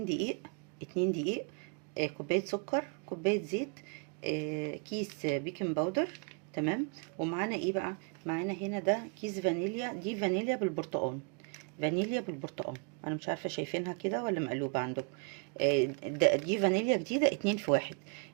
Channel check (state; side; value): quieter; left; 37.4 dB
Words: دقيق، 2 دقيق، كوبايه سكر، كوبايه زيت، كيس بيكنج باودر. تمام. ومعانا ايه بقى؟ معانا هنا ده كيس فانيليا، دي فانيليا بالبرتقال. فانيليا بالبرتقال، انا مش عارفه شايفينها كده ولا مقلوبه عندكم. دي فانيليا جديده، 2 في 1.